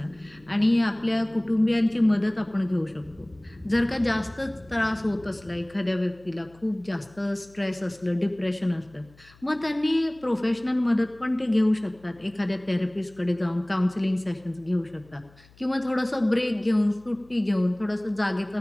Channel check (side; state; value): left; noise; hum, 27 dB below the sound